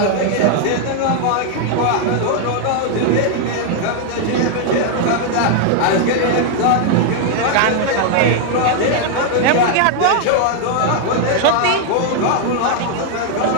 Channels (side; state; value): both; different; correlation 0.00